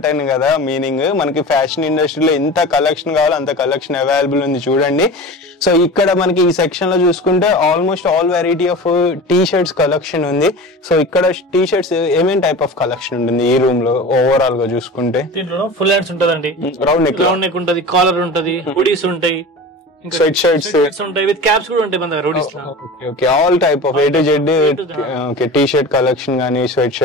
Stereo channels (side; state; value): both; normal; correlation 0.33